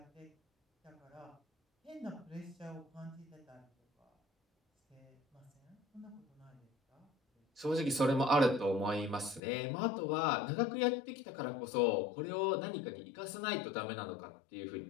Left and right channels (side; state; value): right; drops out; at 9.4 s